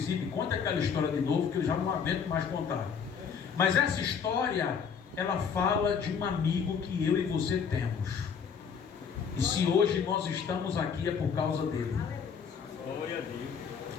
me conta aquela história de novo, que eu já não aguento mais contar. Mas essa história, ela fala de um amigo que eu e você temos. E se hoje nós estamos aqui é por causa dele.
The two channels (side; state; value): right; quieter; 6.7 dB